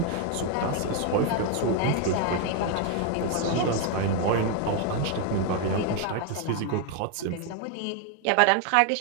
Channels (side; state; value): both; different; correlation 0.01